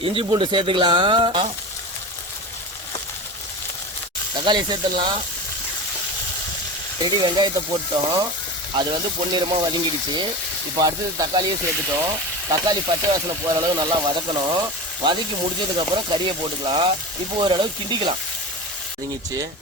இஞ்சி பூண்டு சேர்த்துக்கலாம். தக்காளி சேர்த்துடலாம். ரெடி வெங்காயத்தை போட்டோம். அது வந்து பொன்னிறமாக வதங்கிடுச்சு. இப்போ அடுத்தது தக்காளியே சேர்த்துட்டோம். தக்காளி பச்சை வாசனை போகிற அளவு நல்லா வதக்கணும். வதக்கி முடிச்சதுக்கப்புறம் கறியை போட்டுக்கலாம். இப்போ ஓரளவு கிண்டிக்கலாம். வதங்கிச்சு,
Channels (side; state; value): both; normal; correlation 0.28